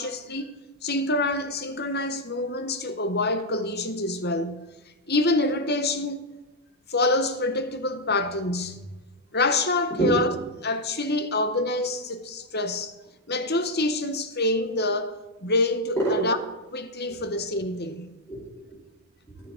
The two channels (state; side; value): normal; both; correlation 0.00